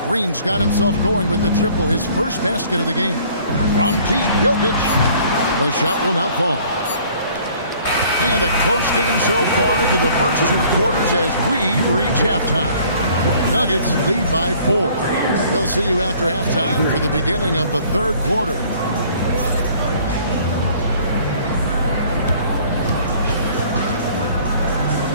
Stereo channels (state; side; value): inverted; both; correlation -0.55